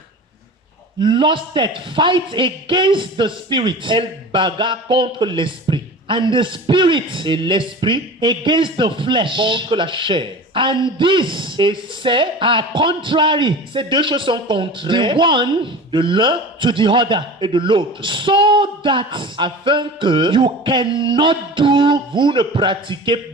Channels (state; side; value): normal; both; correlation 0.35